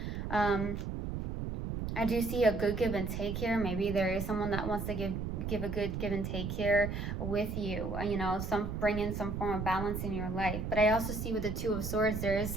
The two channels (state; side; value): noise; right; rumble, 4 dB below the sound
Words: I do see a good give and take here. Maybe there is someone that wants to give a good give and take here with you. You know, bring in some form of balance in your life. But I also see with the Two of Swords, there is